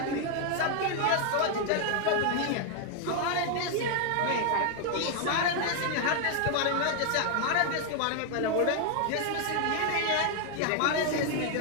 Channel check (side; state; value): both; different; correlation 0.00